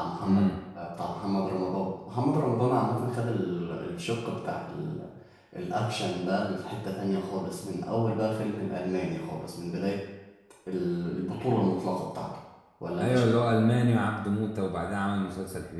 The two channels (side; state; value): both; identical; correlation 1.00